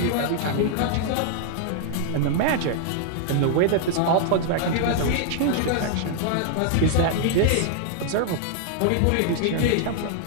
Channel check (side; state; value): both; different; correlation -0.01